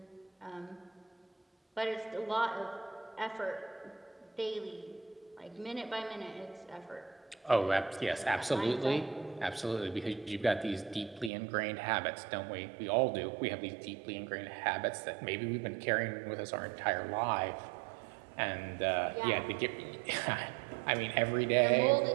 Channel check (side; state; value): left; drops out; at 11.3 s